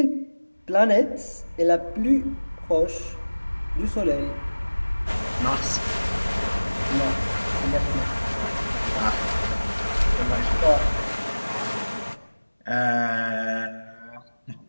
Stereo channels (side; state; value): both; inverted; correlation -1.00